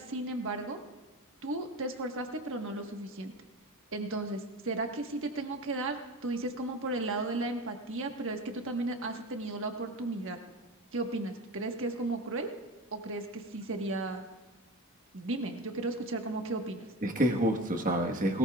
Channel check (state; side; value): normal; both; correlation 0.31